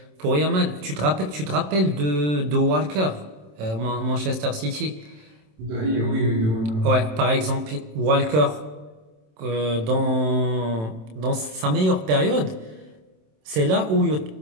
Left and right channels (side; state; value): left; late; 27 ms